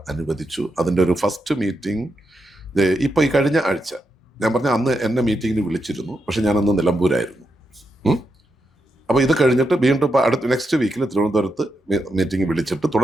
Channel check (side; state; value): both; normal; correlation 0.84